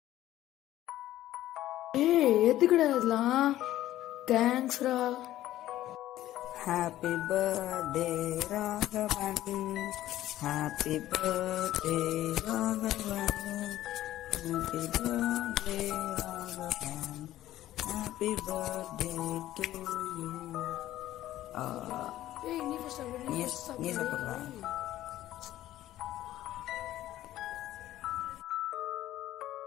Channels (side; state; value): right; quieter; 14.1 dB